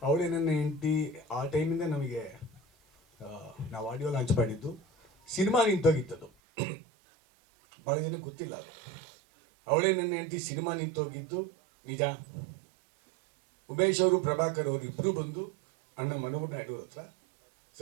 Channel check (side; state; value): left; drops out; at 6.3 s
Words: ಅವಳೇ ನನ್ನ ಹೆಂಡತಿ. ಆ ಟೈಮಿಂದ ನಮಗೆ ನಾವು ಆಡಿಯೋ ಲಾಂಚ್ ಮಾಡಿದ್ದು. ಸಿನಿಮಾ ನಿಂತೋಗಿತ್ತದು, ಭಾಳ ಜನಕ್ಕೆ ಗೊತ್ತಿಲ್ಲ ಅದು. ಅವಳೇ ನನ್ನ ಹೆಂಡತಿ ಸಿನಿಮಾ ನಿಂತೋಗಿದ್ದು ನಿಜ. ಉಮೇಶ್ ಅವರು, ಪ್ರಭಾಕರ್ ಅವರು ಇಬ್ಬರು ಬಂದು ಅಣ್ಣ ಮನೋಹರ್ ನಾಯ್ಡು ಹತ್ರ,